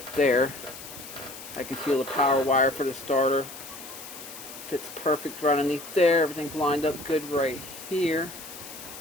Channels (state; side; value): noise; left; hiss, 13 dB below the sound